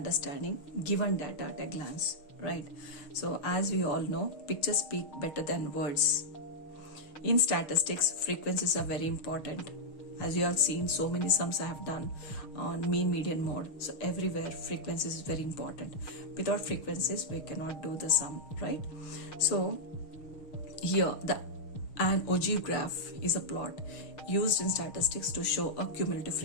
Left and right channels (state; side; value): late; right; 6.5 ms